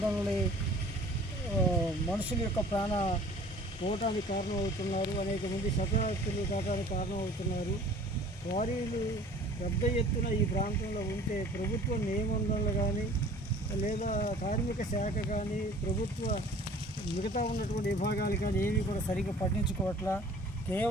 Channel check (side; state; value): both; normal; correlation 0.48